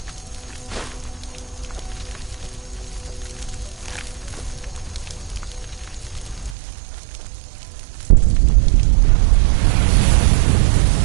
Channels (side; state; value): left; drops out; at 6.6 s